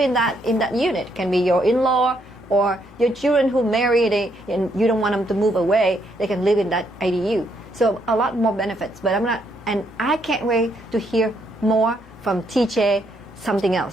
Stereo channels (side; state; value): both; normal; correlation 0.74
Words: that unit. It can be your in-law or your children who marry, and you don't want them to move away. They can live in that ADU. So a lot more benefits. But I can't wait to hear more from TJ. Something